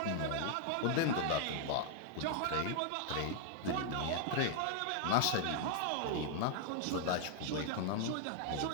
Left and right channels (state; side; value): different; both; correlation 0.00